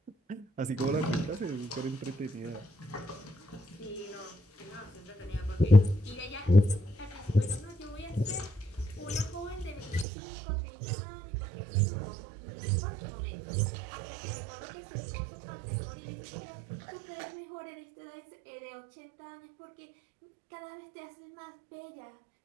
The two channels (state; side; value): drops out; left; at 10.1 s